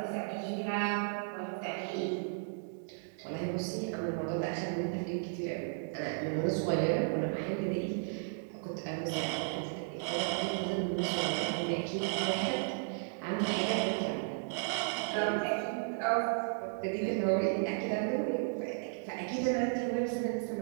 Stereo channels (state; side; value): silent; left; digital silence